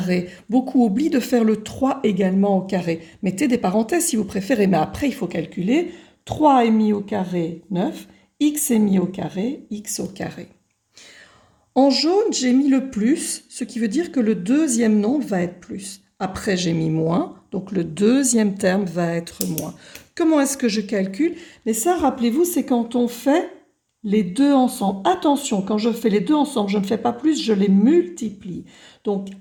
Beaucoup oublient de faire le 3 également au carré. Mettez des parenthèses si vous préférez, mais après, il faut calculer. 3 est mis au carré, 9. X est mis au carré, x au carré. En jaune, j'ai mis le plus, ce qui veut dire que le deuxième nombre va être plus. Après, j'ai mis moins, donc le deuxième terme va être moins. Comment est-ce que je calcule? Mais ça, rappelez-vous, c'est quand on fait les deux ensemble. Attention, quand je fais les deux ensemble, je ne fais pas plus, je les multiplie. Donc,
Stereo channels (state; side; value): identical; both; correlation 1.00